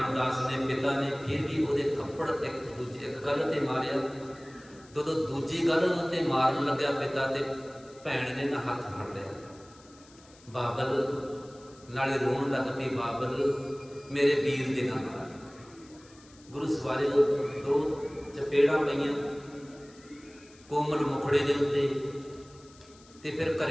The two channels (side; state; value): left; noise; hiss, 25 dB below the sound